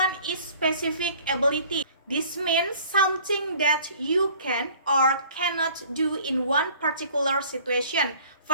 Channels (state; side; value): inverted; both; correlation -0.51